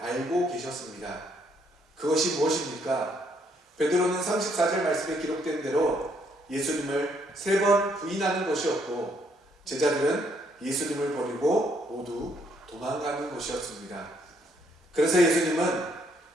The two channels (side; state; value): both; normal; correlation 0.70